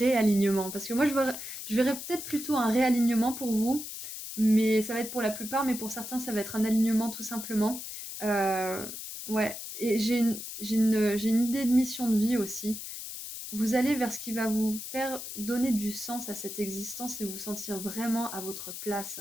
Parce que moi, je verrais peut-être plutôt un réalignement pour vous. Mais ça va être pour la plupart, mais pour certains, ça va être un alignement tout simplement. Euh, ouais, et j'ai une idée de mission de vie aussi. Vous allez vers ce qui va vous faire donner du sens à cette existence et vous sentir vraiment à votre place.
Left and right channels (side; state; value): left; noise; hiss, 9 dB below the sound